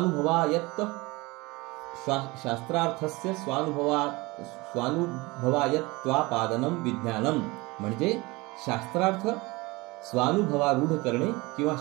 स्वानुभवायत्वापादनम विज्ञानम म्हणजे शास्त्रार्थ स्वानुभवारूढ करणे किंवा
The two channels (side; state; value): left; quieter; 23.3 dB